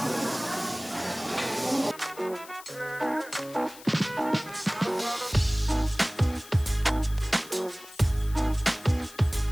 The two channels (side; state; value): left; noise; hiss, 18 dB below the sound